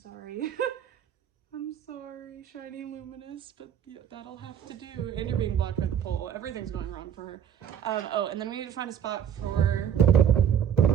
I'm sorry, shiny luminous, but yeah, that'll have to do. And you're being blocked by the pole. Everything's going wrong for her. Oh, and then we need to find a spot for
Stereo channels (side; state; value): left; quieter; 9.1 dB